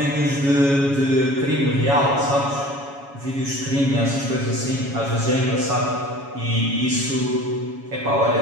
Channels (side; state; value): left; late; 7.2 ms